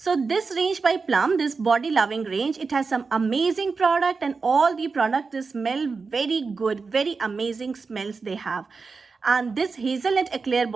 this range by Plum, this body loving range, it has some amazing product and all the products smell very good, very amazing smells they have. And this hazelnut eclair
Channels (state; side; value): quieter; left; 4.6 dB